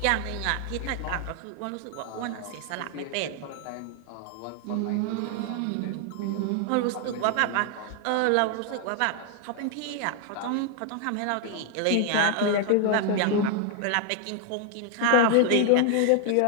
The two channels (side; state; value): both; different; correlation 0.00